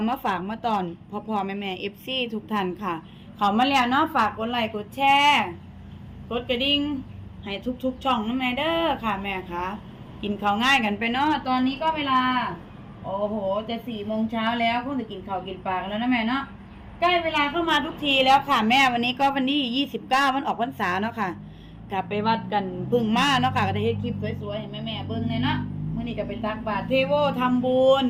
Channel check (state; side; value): identical; both; correlation 1.00